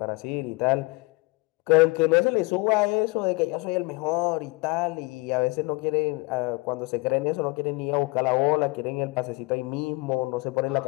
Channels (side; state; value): right; quieter; 26.1 dB